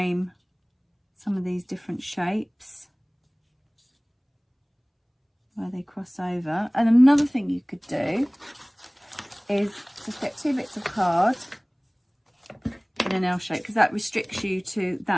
some of these different shapes where they cross over. And another thing you could do is just get 2 bits of card in an L shape, because that restricts you to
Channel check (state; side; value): identical; both; correlation 1.00